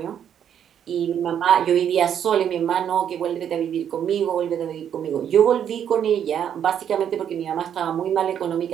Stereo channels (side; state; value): left; quieter; 9.1 dB